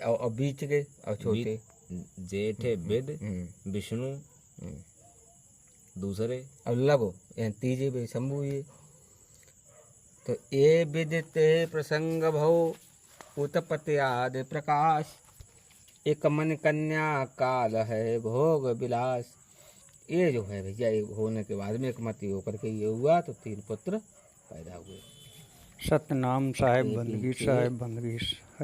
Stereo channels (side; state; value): both; identical; correlation 1.00